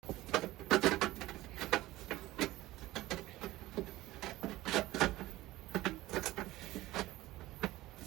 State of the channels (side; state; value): left; quieter; 17.2 dB